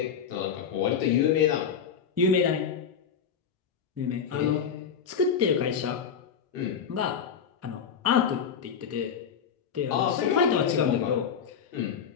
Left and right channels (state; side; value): quieter; right; 7.2 dB